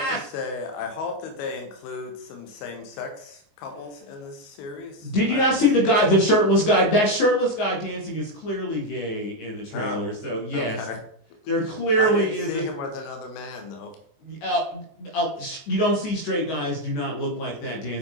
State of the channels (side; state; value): right; late; 19 ms